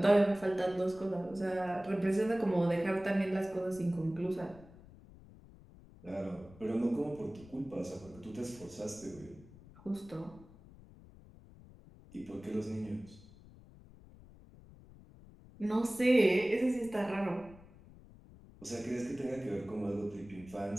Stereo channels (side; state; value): left; noise; rumble, 21 dB below the sound